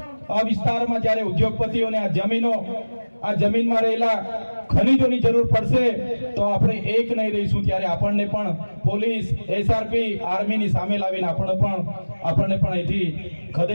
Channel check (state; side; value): inverted; both; correlation -1.00